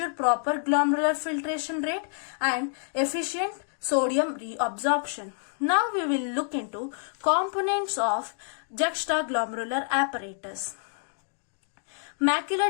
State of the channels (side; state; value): right; silent; 59 dB below the other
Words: proper glomerular filtration rate and efficient sodium reabsorption. Now we will look into components of juxtaglomerular apparatus. Macular